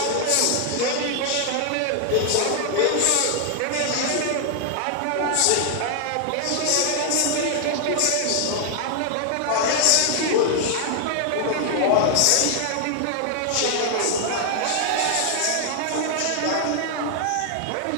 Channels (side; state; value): both; different; correlation 0.00